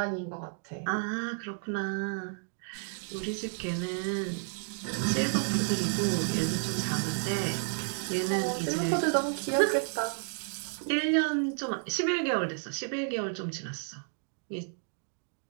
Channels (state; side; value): silent; left; 57 dB below the other